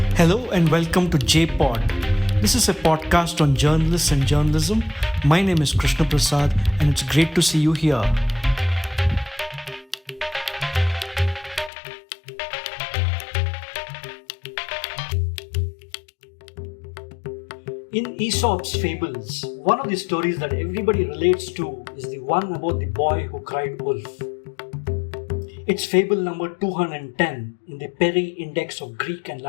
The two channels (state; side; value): drops out; right; at 11.7 s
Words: Hello and welcome to JPod. This is a podcast on journalists and journalism. My name is Krishna Prasad and it's great to see you here. In Aesop's fables, one of the stories that everybody relates to is the one about the boy who cried wolf. It's fable number 210 in the Peri Index of Greek and